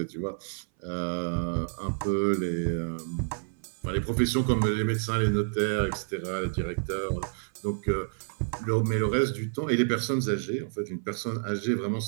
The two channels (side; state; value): left; silent; 59 dB below the other